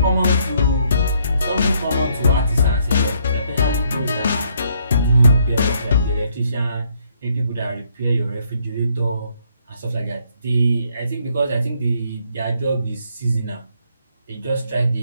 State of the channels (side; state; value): both; inverted; correlation -0.70